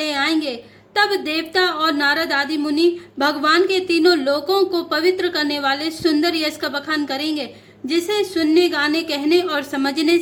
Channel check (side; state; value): both; identical; correlation 1.00